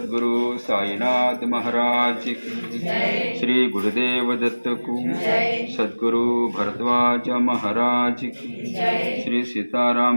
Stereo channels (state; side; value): inverted; both; correlation -1.00